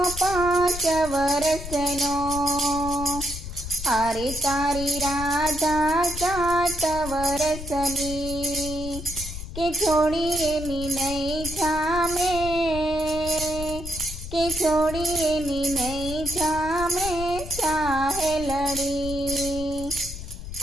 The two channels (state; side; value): noise; left; rumble, 9 dB below the sound